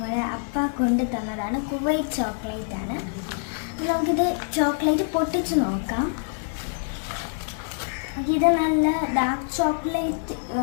അപ്പ കൊണ്ട് തന്നതാണ്. കുവൈറ്റ് ചോക്ലേറ്റ് ആണ്. നമുക്കിത് ചോക്ലേറ്റ് പൊട്ടിച്ച് നോക്കാം. ഇത് നല്ല ഡാർക്ക് ചോക്ലേറ്റ്,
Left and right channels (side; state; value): right; silent; digital silence